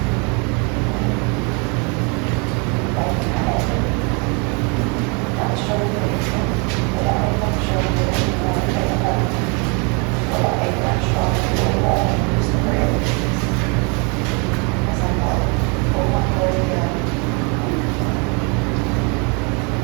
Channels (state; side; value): quieter; left; 33.0 dB